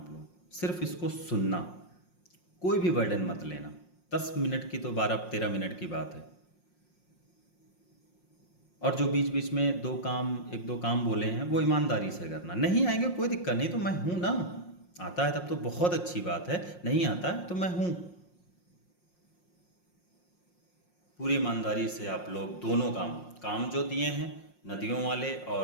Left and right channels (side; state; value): right; late; 5.6 ms